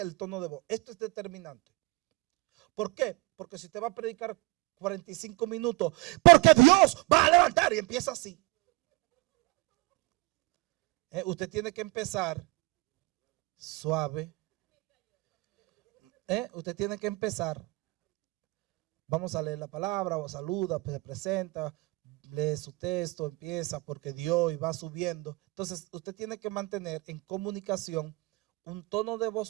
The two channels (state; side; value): quieter; left; 23.7 dB